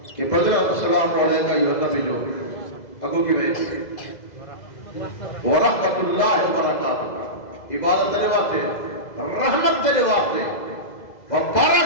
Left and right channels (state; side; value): late; right; 2.0 ms